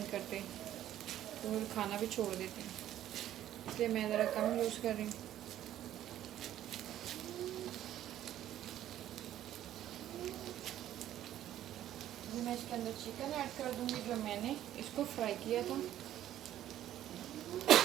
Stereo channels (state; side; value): quieter; left; 12.3 dB